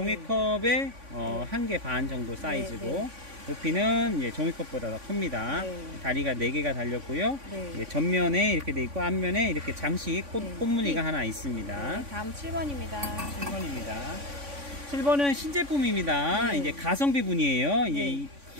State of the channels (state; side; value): late; left; 3.5 ms